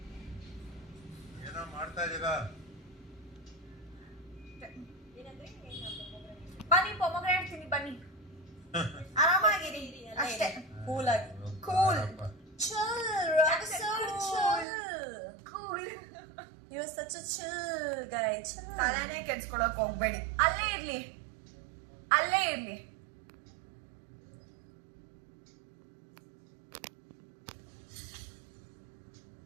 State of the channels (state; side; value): drops out; left; at 14.7 s